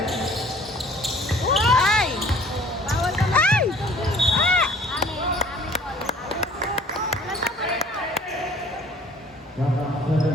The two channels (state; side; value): normal; both; correlation 0.51